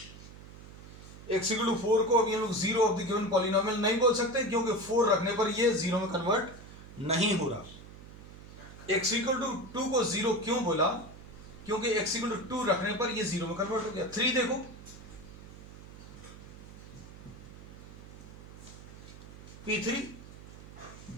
x इक्वल टू 4 को अभी हम लोग zero of the given polynomial नहीं बोल सकते क्योंकि 4 रखने पर ये जीरो में कन्वर्ट नहीं हो रहा. x इक्वल टू 2 को जीरो क्यों बोला, क्योंकि x इक्वल टू 2 रखने पर ये जीरो में कन्वर्ट हो गया. 3 देखो, p3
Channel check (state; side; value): noise; right; hum, 16 dB below the sound